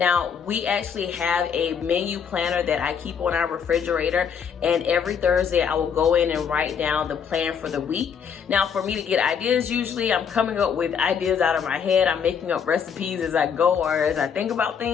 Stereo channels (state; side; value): quieter; right; 7.1 dB